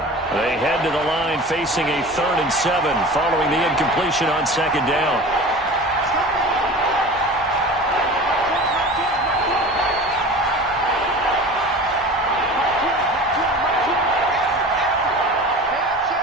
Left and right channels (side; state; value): both; normal; correlation 0.36